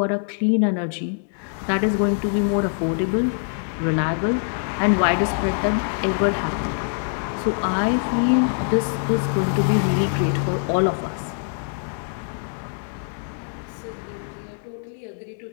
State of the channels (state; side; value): silent; right; digital silence